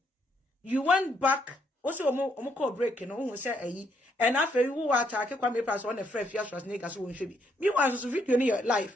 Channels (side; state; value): both; normal; correlation 0.73